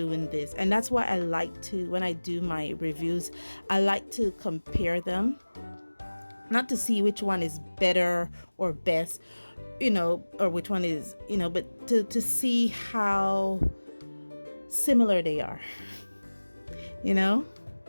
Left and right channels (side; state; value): both; inverted; correlation -1.00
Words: this. And that's why I like to, when I do my reviews, I like to compare them. Not to see which one is better or best, or which one is, but to see how similar they are,